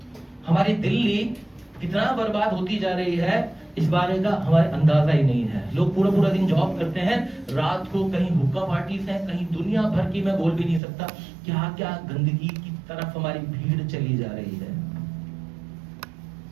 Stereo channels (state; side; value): drops out; left; at 10.8 s